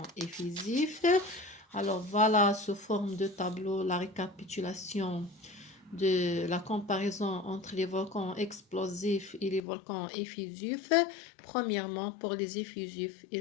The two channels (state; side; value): drops out; right; at 9.6 s